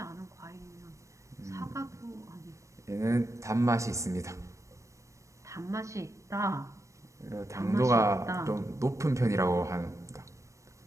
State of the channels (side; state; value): left; late; 0.15 ms